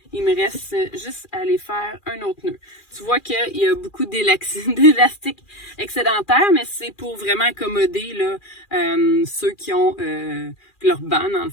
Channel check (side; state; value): right; late; 2.4 ms